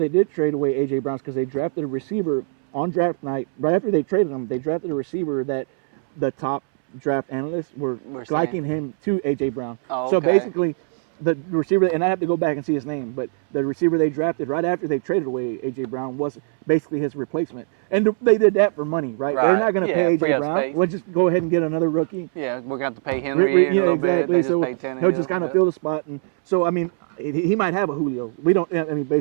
did trade away A.J. Brown is because they drafted a receiver on draft night. Right after they traded him, they drafted a receiver that the top draft analysts were liking him to A.J. Brown. Oh, So okay. basically, the receiver, and I have to go back and see his name, but the receiver they drafted right after they traded away A.J. Brown was basically his replacement. And they did that for money, right? They're not going to pay A.J. Brown. Pay. We'll just go ahead and get another rookie. Yeah, we're going to have to pay him. Exactly. So he'll just kind of fill the spot. And so, I mean, he might have a Julio. We don't, I mean,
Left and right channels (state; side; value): silent; left; 64 dB below the other